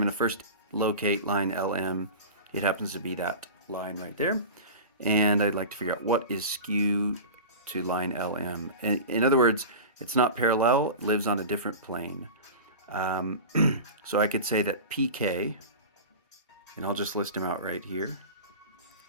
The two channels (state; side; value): inverted; both; correlation -0.31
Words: to first locate line LM. It happens to be that line right there. And I'd like to figure out what is skew to line LM. In other words, it's not parallel, it lives on a different plane. So I could say that PK, and I'll just list them out right here.